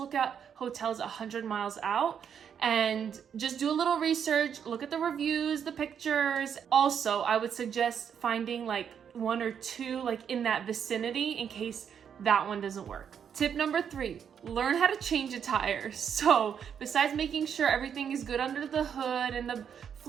at hotels 100 miles out and just do a little research, look at the reviews, the pictures. Also, I would suggest finding like 1 or 2 like in that vicinity in case that one doesn't work. Tip number 3, learn how to change a tire. So besides making sure everything is good under the hood and the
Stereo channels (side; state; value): left; quieter; 7.9 dB